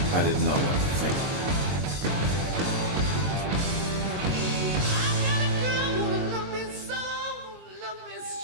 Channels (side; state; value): left; late; 22 ms